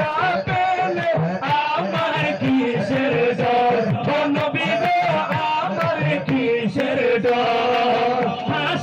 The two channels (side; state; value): both; identical; correlation 1.00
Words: আমার কিসের ডর, ও নবী গো আমার কিসের ডর।